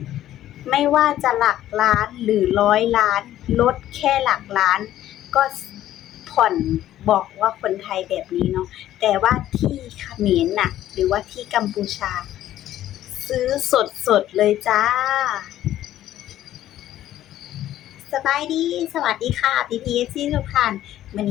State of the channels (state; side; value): quieter; right; 12.9 dB